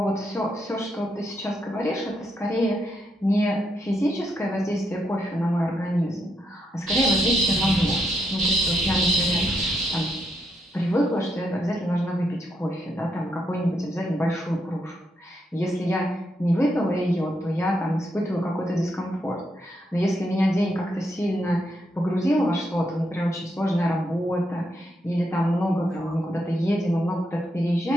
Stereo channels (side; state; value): both; normal; correlation 0.80